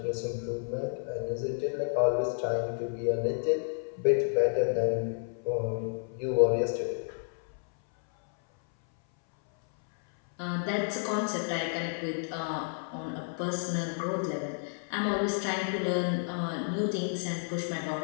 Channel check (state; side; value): silent; right; 57 dB below the other